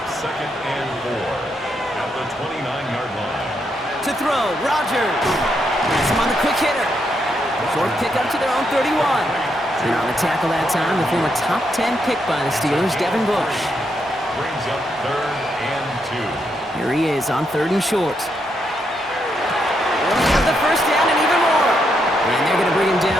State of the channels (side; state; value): both; normal; correlation 0.79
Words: 2nd and 4 at the 29-yard line. To throw, Rodgers. Has him on the quick hitter. Short pickup to their own 31. And on the tackle that time, the former top 10 pick by the Steelers, Devin Bush. Brings up 3rd and 2. Here he is on 3rd and short. He'll have the first down and even more. And they're going to bring him